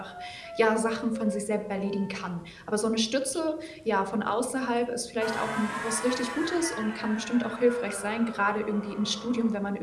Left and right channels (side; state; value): both; identical; correlation 1.00